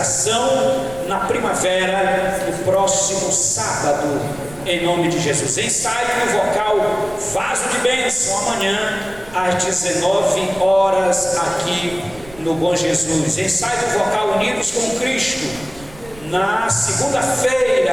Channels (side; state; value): right; noise; rumble, 20 dB below the sound